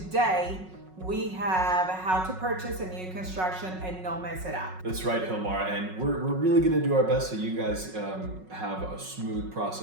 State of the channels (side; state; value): left; late; 5.4 ms